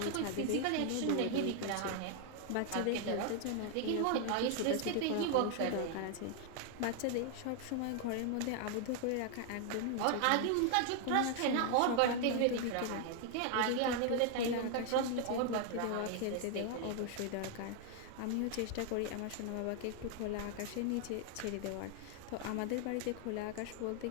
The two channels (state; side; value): different; both; correlation 0.00